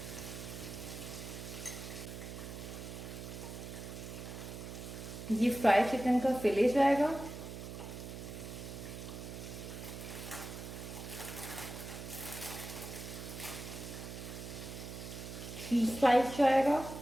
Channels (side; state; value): right; noise; hum, 9 dB below the sound